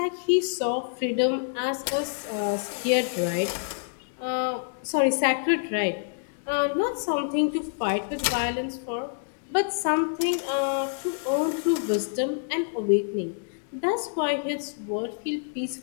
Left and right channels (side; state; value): right; silent; digital silence